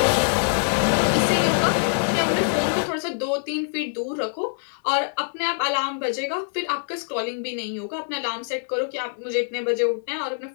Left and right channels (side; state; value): right; silent; digital silence